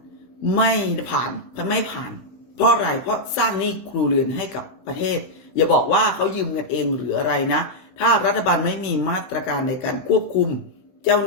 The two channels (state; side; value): late; right; 16 ms